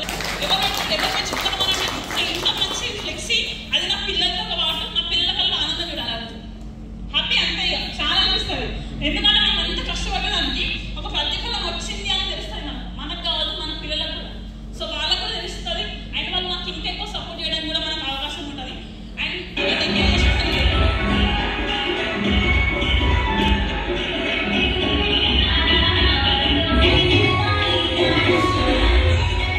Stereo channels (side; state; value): both; identical; correlation 1.00